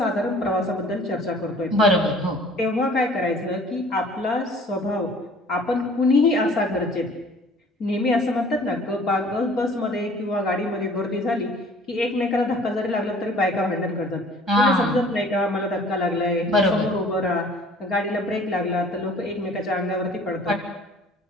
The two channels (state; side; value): normal; both; correlation 0.51